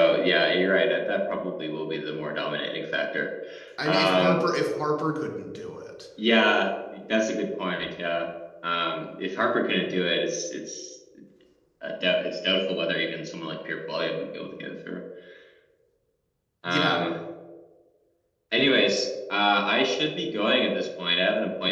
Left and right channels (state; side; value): identical; both; correlation 1.00